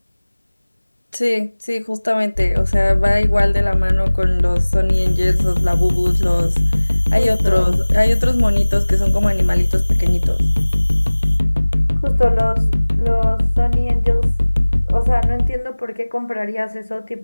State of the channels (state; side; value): inverted; both; correlation -1.00